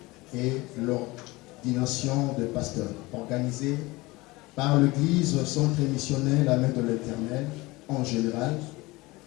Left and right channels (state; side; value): quieter; right; 21.9 dB